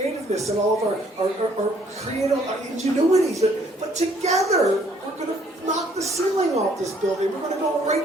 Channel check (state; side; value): normal; both; correlation 0.63